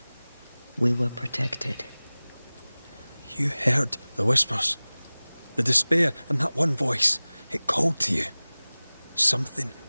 We were protected. You heard the whispers, the despair, and that one voice. It called to you. Something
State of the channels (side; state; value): both; inverted; correlation -0.99